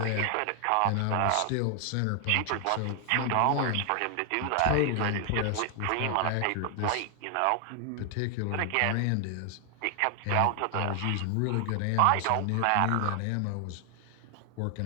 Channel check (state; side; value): different; both; correlation 0.00